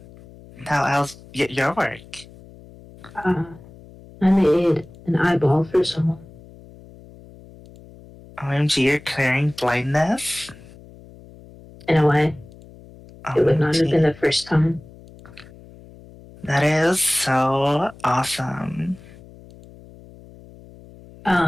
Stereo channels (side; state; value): left; noise; hum, 21 dB below the sound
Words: your work? I made an eyeball for someone. OMG, you're clearing blindness? In a way, it would not have OMG. been the first time. That is so awesome.